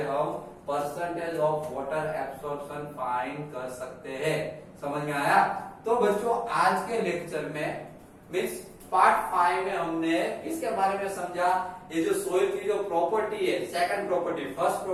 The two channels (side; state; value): both; identical; correlation 1.00